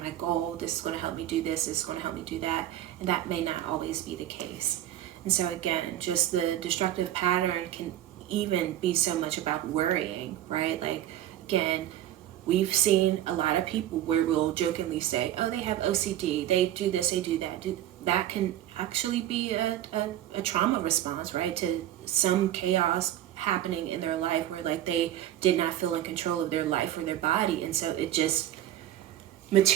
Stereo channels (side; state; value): left; quieter; 12.6 dB